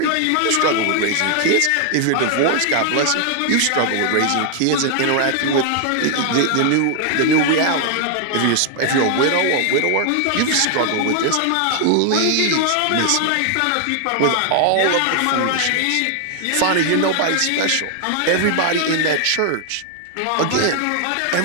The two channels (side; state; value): both; different; correlation 0.00